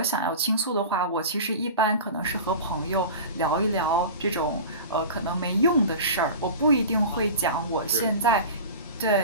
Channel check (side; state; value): both; inverted; correlation -0.33